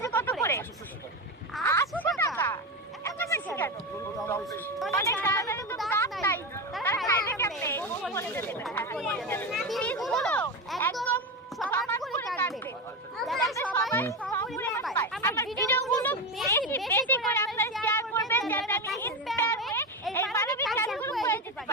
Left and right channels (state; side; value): normal; both; correlation 0.17